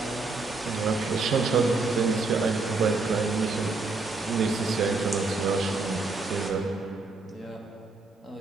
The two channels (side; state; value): left; quieter; 3.8 dB